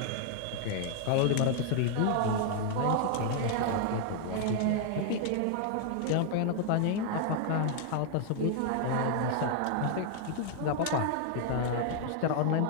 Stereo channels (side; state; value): both; different; correlation 0.00